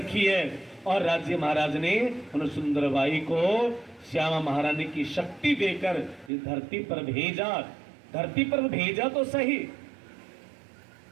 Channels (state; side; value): drops out; left; at 6.3 s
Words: है। और राज्य महाराज ने उन सुंदरबाई को श्यामा महारानी की शक्ति देकर इस धरती पर भेजा। धरती पर भेजा तो सही,